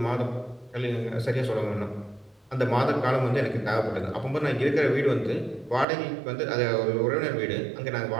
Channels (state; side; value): drops out; left; at 5.9 s